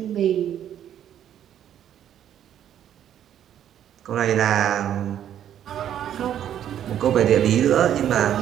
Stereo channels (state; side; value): quieter; left; 10.4 dB